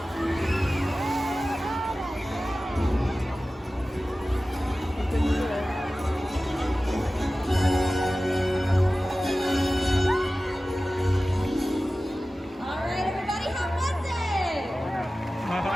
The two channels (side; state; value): both; normal; correlation 0.96